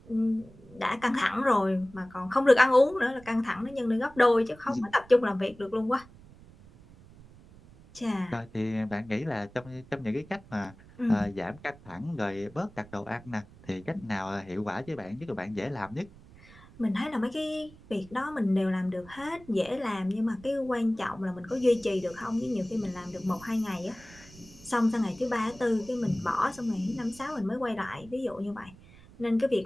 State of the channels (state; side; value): noise; right; rumble, 22 dB below the sound